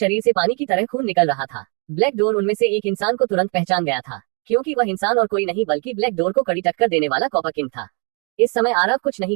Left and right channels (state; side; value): quieter; left; 37.2 dB